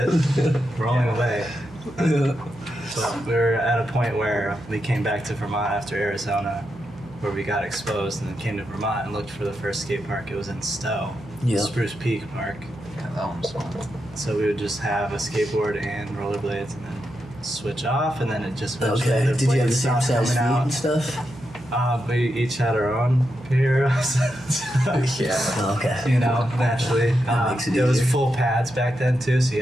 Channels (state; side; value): noise; right; hum, 19 dB below the sound